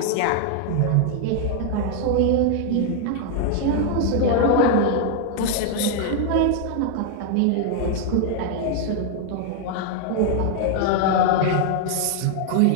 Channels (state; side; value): different; both; correlation 0.00